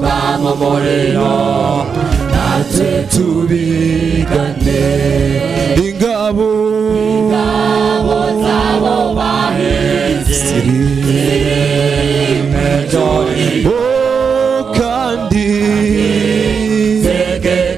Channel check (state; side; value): quieter; left; 6.1 dB